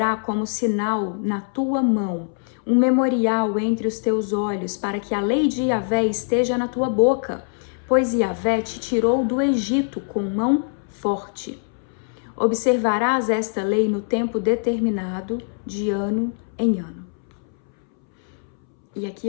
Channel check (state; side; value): silent; right; 64 dB below the other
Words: como sinal na tua mão, um memorial entre os teus olhos, para que a lei de Yahvé esteja na tua boca, pois Yahvé te tirou do Egito com mão forte. Observarás esta lei no tempo determinado, de ano em ano. E aqui